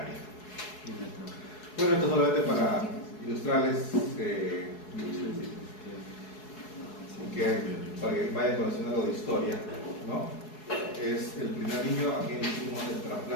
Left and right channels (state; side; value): late; right; 4.7 ms